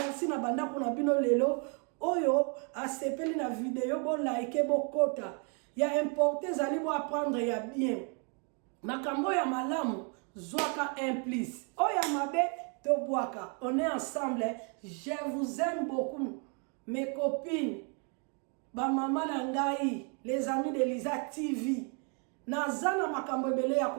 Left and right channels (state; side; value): quieter; left; 37.6 dB